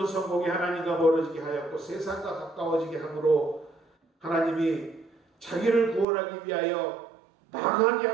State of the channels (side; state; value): left; drops out; at 6.1 s